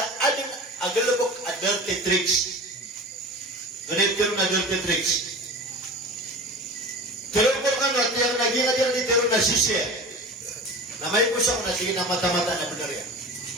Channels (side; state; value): both; normal; correlation 0.34